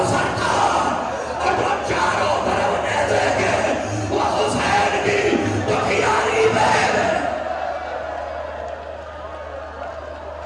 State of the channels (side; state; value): both; identical; correlation 1.00